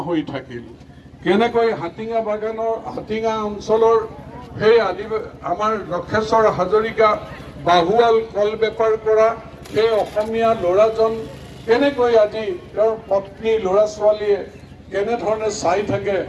হৈ থাকিল, কেনেকৈ হাটিঙা অঞ্চলৰ সেই আমাৰ লক্ষেশ্বৰ হাজৰিকা বাহুৱাল কল বেপাৰ কৰা সেই অসমীয়া ল'ৰাজন কেনেকৈ আজি তেওঁৰ পত্নী ল'ৰা ছোৱালীয়ে কেনেধৰণে চাই থাকে,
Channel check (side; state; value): both; identical; correlation 1.00